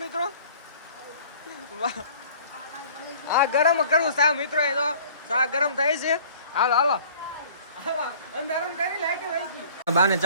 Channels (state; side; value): inverted; both; correlation -0.50